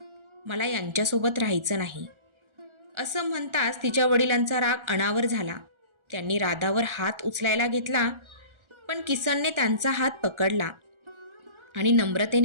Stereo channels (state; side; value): late; left; 1.4 ms